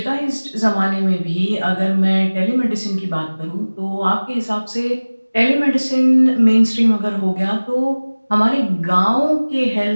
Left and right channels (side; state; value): both; inverted; correlation -1.00